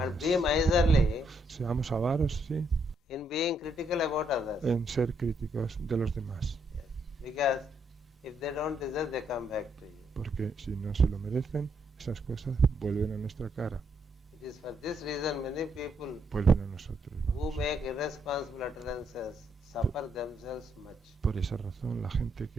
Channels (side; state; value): both; normal; correlation 0.75